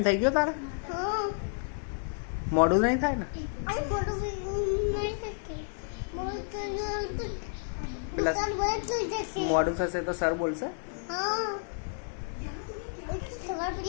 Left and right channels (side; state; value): right; silent; 57 dB below the other